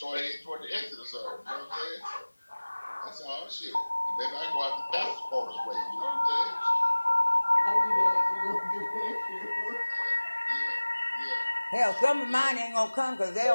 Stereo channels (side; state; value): both; inverted; correlation -1.00